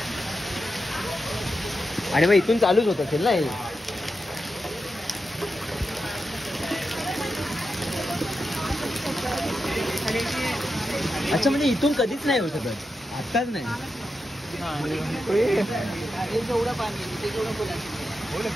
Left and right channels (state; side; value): normal; both; correlation 0.88